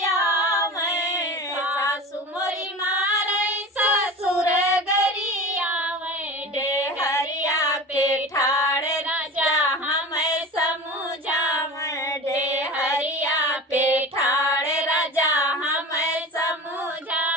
सासु मोरी मारई ससुर गरियावे, डेहरिया पे ठाड़ राजा हमें समझावे, डेहरिया पे ठाड़ राजा हमें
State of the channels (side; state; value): both; normal; correlation 0.33